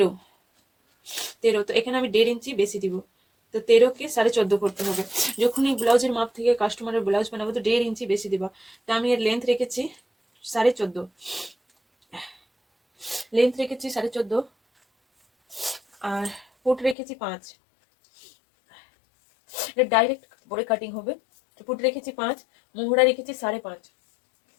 তো এখানে আমি 1.5 ইঞ্চি বেশি দিব। তো 13কে 14.5 করতে হবে। যখনই ব্লাউজের মাপ থেকে কাস্টমারের ব্লাউজ বানাবো তো 1.5 ইঞ্চি বেশি দিবা। তো আমি এর লেন্থ রেখেছি 14.5, আর পুট রেখেছি 5। এটা ডাইরেক্ট পরে কাটিং হবে। পুট রেখেছি 5, মোহরা রেখেছি 5.5।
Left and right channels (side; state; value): right; drops out; at 16.9 s